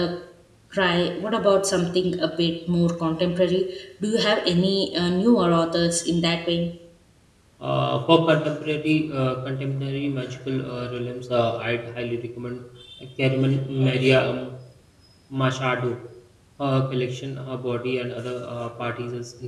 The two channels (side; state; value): both; identical; correlation 1.00